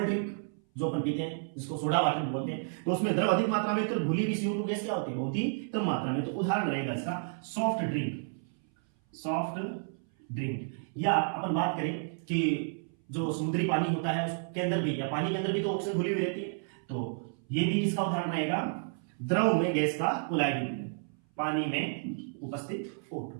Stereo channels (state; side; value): silent; left; 57 dB below the other